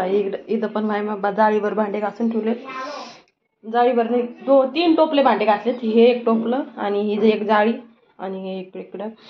इथं पण माझ्या जाळीवर भांडे घासून ठेवलेत. जाळीवर नाही 2-3 टोपले भांडे घासलेत. हे एक टोपलं आणि ही एक जाळी आणि हे इकडं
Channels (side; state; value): both; identical; correlation 1.00